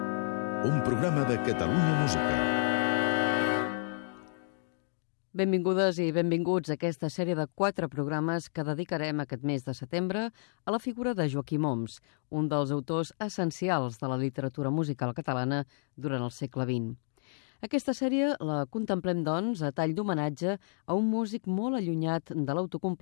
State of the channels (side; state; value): right; silent; digital silence